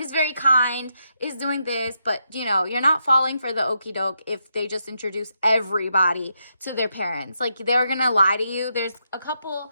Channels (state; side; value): inverted; both; correlation -0.82